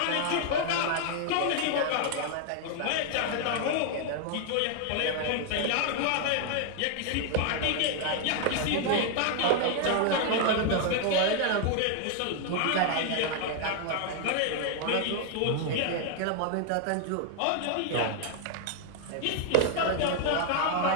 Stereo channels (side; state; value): both; different; correlation 0.00